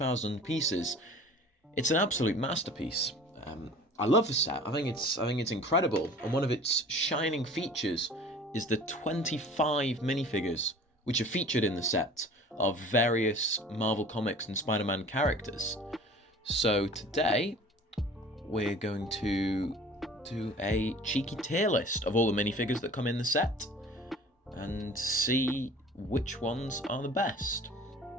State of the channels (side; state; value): both; normal; correlation 0.45